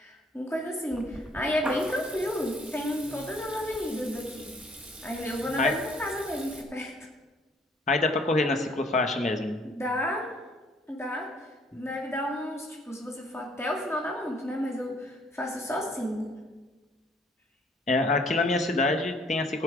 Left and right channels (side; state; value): both; normal; correlation 0.61